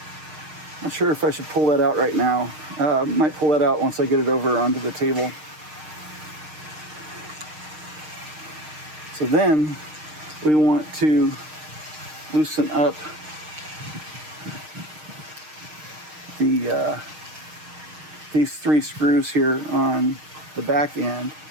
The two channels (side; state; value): left; late; 6.5 ms